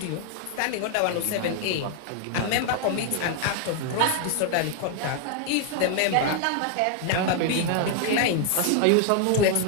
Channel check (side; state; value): both; different; correlation 0.00